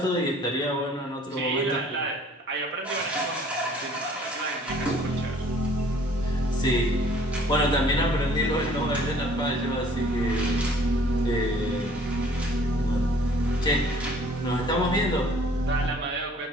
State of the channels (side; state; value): both; normal; correlation 0.56